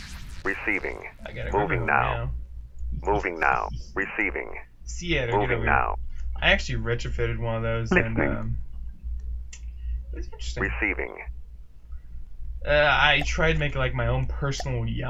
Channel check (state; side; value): identical; both; correlation 1.00